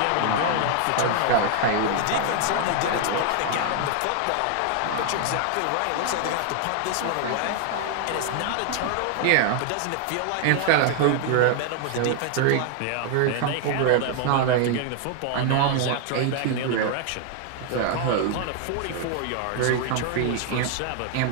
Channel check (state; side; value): different; both; correlation 0.00